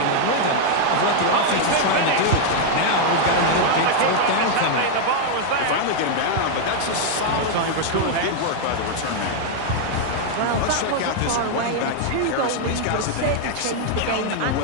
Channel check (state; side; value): different; both; correlation 0.00